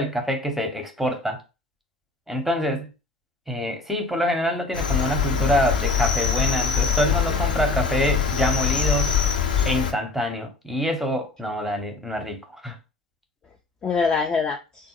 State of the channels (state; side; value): quieter; right; 3.0 dB